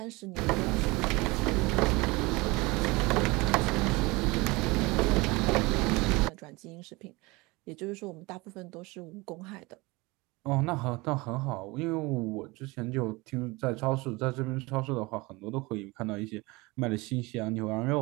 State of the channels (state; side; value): quieter; left; 23.8 dB